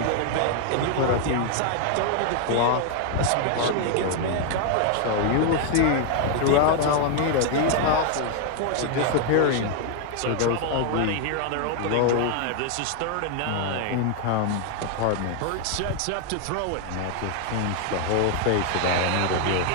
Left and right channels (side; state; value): both; different; correlation 0.00